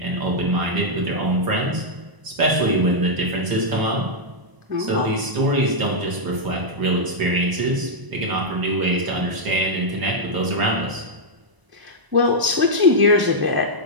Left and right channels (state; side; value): late; left; 1.0 ms